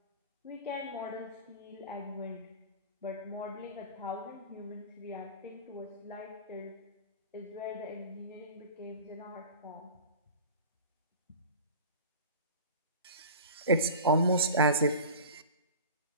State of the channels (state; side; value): inverted; both; correlation -0.36